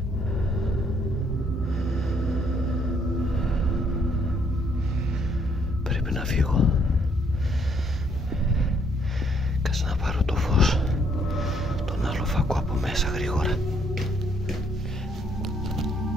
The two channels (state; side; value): normal; both; correlation 0.68